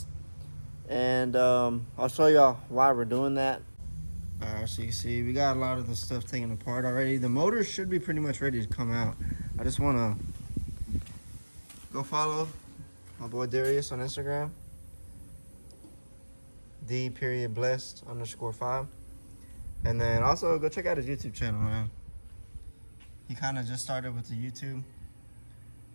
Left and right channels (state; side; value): inverted; both; correlation -1.00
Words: and I'll show y'all why we're doing that. So you can see we got a lot of the stuff taken apart already. The motor should be pretty much ready to come out. I just want to go follow my boy Darius on Instagram, D.blessed_5, and then also go check out his YouTube channel, man. He kind of just started with the YouTube.